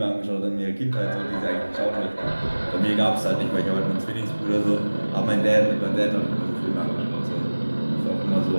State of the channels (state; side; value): inverted; both; correlation -1.00